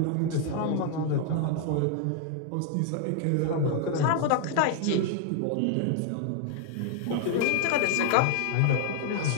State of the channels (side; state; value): both; different; correlation 0.00